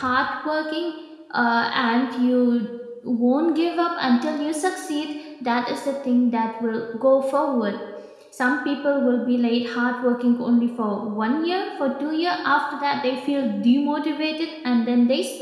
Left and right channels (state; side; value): identical; both; correlation 1.00